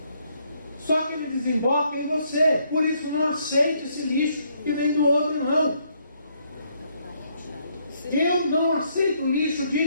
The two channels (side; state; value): both; inverted; correlation -0.71